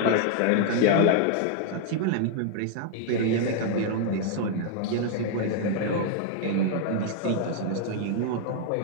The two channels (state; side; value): different; both; correlation 0.00